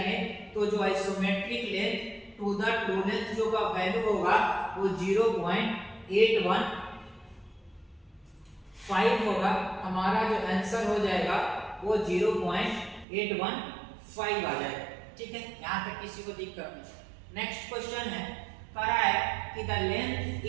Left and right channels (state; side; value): drops out; left; at 13.1 s